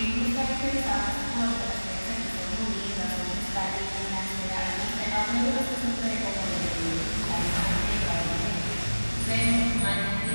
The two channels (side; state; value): both; inverted; correlation -1.00